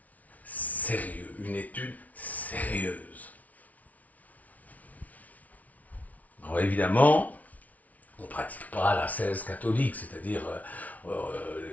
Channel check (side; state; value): right; late; 0.071 ms